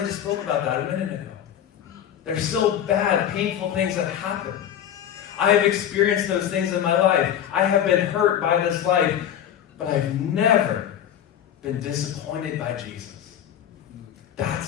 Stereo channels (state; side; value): quieter; right; 10.0 dB